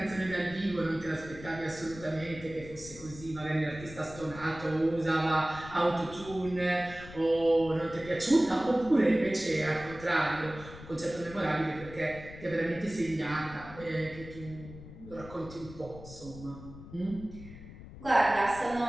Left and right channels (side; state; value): left; noise; rumble, 15 dB below the sound